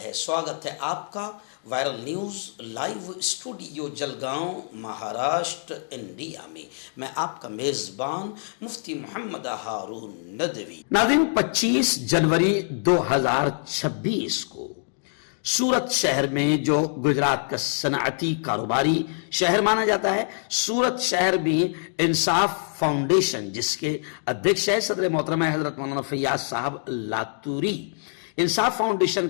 سواگت ہے آپ کا viral news live studio Jalgaon Maharashtra India میں۔ میں آپ کا میزبان مفتی محمد ہارون ندوی۔ ناظرین، 25 جنوری 2026 کو سورت شہر میں، جو گجرات کا صنعتی کاروباری شہر مانا جاتا ہے، سورت شہر میں انصاف فاؤنڈیشن، جس کے ادھیکش ہے صدر محترمہ حضرت مولانا فیاض صاحب لاتوری، انصاف فاؤنڈیشن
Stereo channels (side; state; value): right; silent; digital silence